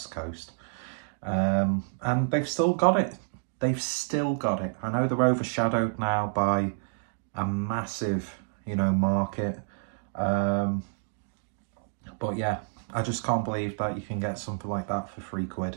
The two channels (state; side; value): silent; left; digital silence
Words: Coast. And they've still got it. I know they're overshadowed now by a massive, market. But yeah, I just can't believe that you can get something like that for £3,